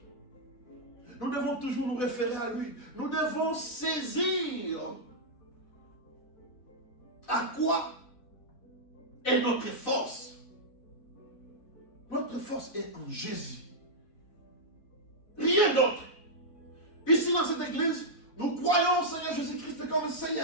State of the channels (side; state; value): right; late; 4.0 ms